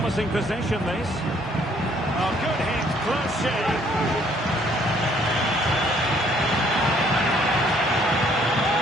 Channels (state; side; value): normal; both; correlation 0.63